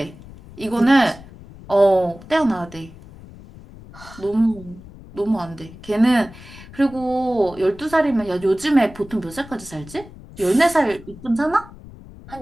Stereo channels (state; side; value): noise; left; rumble, 18 dB below the sound